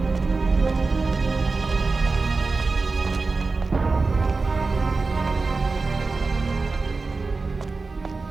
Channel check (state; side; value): quieter; left; 3.9 dB